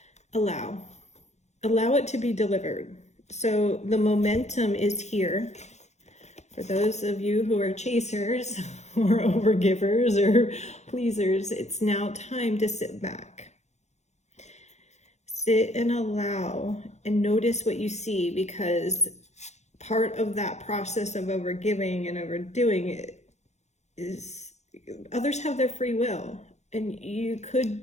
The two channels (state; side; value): late; right; 0.33 ms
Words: Allow it to be delivered. So the momentum is here. For those of you who are chasers or overgivers or pleasers, it's now time to sit back. Sit and allow and notice what you see, because part of that process of overgiving and overdoing it is others have their free will, and you could